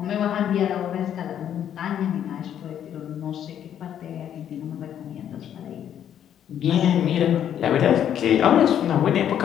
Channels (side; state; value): right; quieter; 9.8 dB